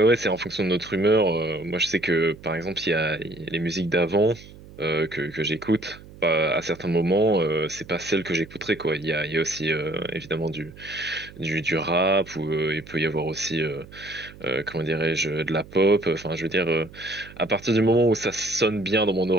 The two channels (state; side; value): noise; right; hum, 19 dB below the sound